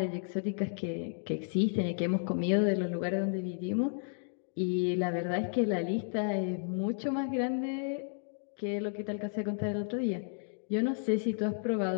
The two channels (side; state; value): right; silent; digital silence